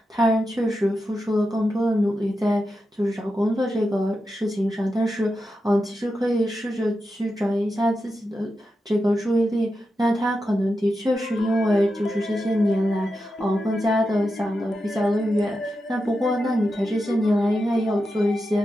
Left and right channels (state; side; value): normal; both; correlation 0.89